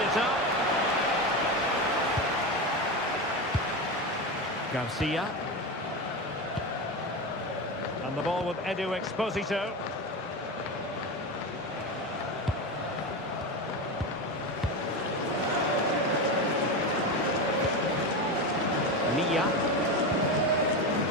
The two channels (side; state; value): both; normal; correlation 0.19